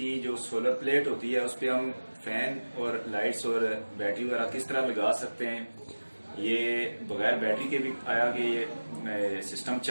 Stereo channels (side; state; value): both; inverted; correlation -1.00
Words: जो सोलर प्लेट होती है उस पर हम फैन और लाइट्स और बैटरी वगैरह किस तरह लगा सकते हैं। ये बगैर बैटरी के भी आया कि ये सिस्टम